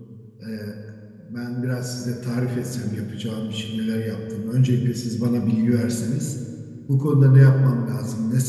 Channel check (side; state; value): both; identical; correlation 1.00